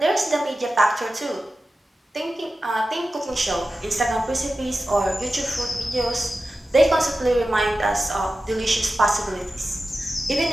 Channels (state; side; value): normal; both; correlation 0.93